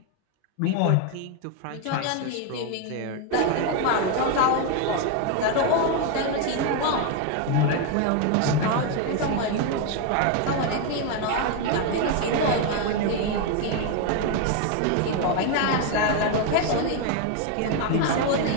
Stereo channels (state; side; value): different; both; correlation 0.01